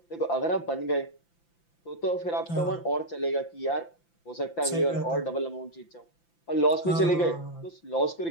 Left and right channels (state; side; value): late; right; 5.9 ms